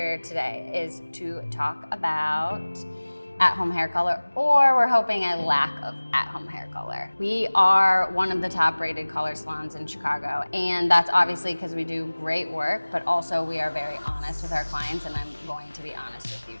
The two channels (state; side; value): inverted; both; correlation -1.00